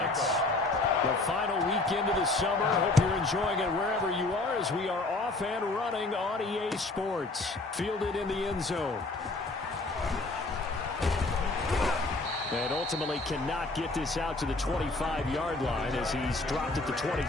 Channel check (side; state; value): right; quieter; 3.1 dB